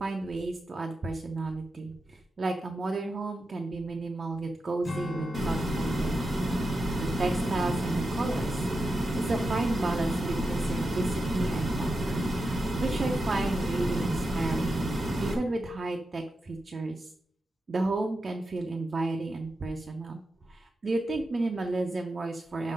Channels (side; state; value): both; normal; correlation 0.89